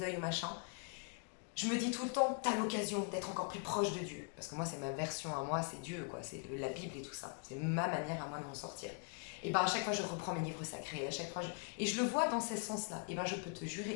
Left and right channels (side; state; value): right; quieter; 39.2 dB